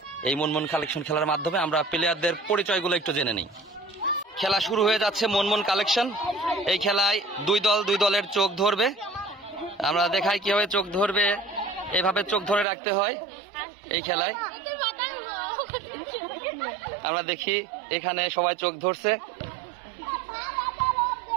এই মনমন কালেকশন খেলার মাধ্যমে। আমরা প্লেয়ারদের পরিচয়গুলো একটু জেনে নিই। খেলা শুরু হয়ে যাচ্ছে মনমন কালেকশন। এই খেলায় দুই দলের চোখ ধরবে। আমরা দেখাই কিভাবে চোখ ধরবে। এইভাবে চোখ ধরে রাখতে হয় এই খেলায়। আমরা দেখি এখানে সবাই চোখ ধরছে।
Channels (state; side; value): drops out; left; at 12.7 s